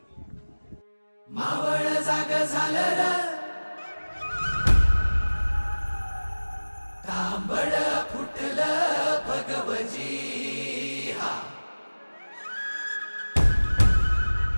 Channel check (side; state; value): both; inverted; correlation -1.00